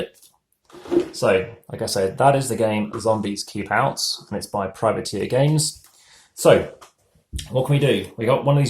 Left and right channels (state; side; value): identical; both; correlation 1.00